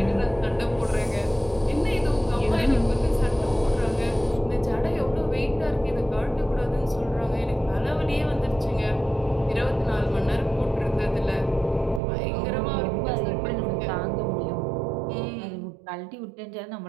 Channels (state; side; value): drops out; left; at 12.0 s